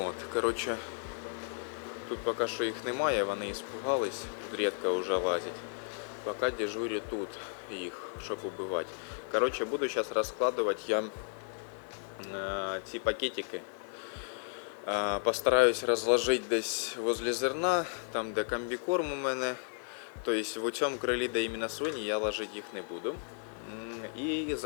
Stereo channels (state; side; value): silent; right; 55 dB below the other